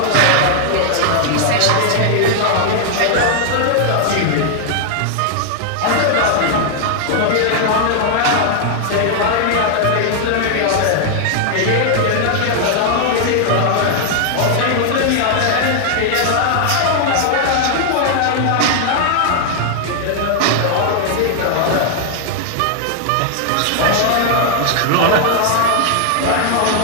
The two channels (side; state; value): both; different; correlation 0.00